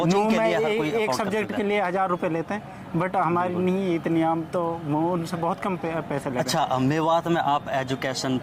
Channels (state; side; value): identical; both; correlation 1.00